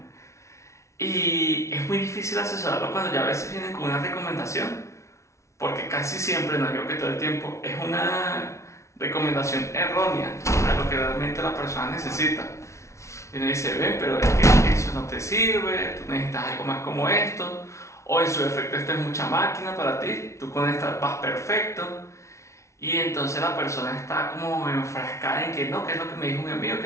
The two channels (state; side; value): late; right; 0.14 ms